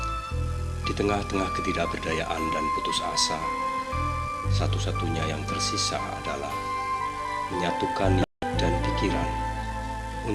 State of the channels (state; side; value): identical; both; correlation 1.00